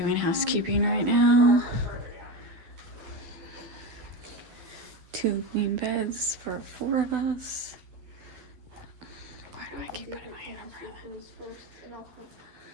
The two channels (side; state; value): left; late; 12 ms